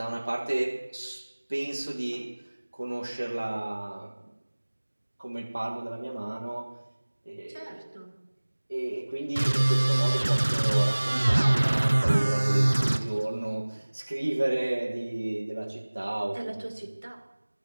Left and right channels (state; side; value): inverted; both; correlation -1.00